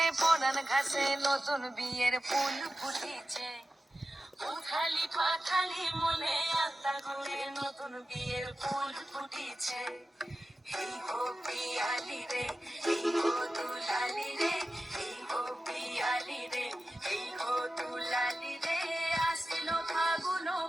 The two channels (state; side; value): normal; both; correlation 0.93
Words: পরাণ ঘাসে নতুন বিয়ের ফুল ফুটিছে। উথালি পাথালি মনে আলতা কোণে নতুন বিয়ের ফুল ফুটিছে। এই গো পিয়ালি রে, এই গো দুলালি রে, এই গো পিয়ালি রে, এই গো দুলালি রে। আশ্বিন ফাগুন